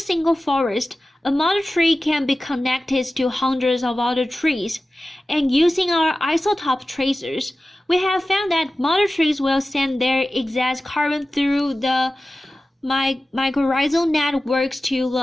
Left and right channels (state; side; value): normal; both; correlation 0.95